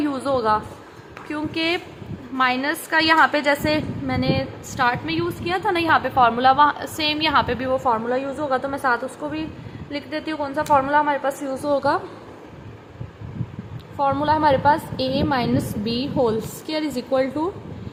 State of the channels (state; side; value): identical; both; correlation 1.00